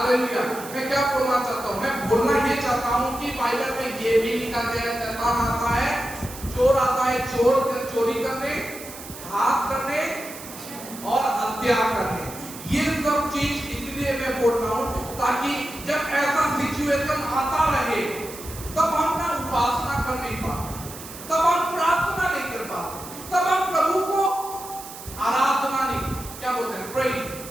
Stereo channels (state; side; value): noise; right; hiss, 14 dB below the sound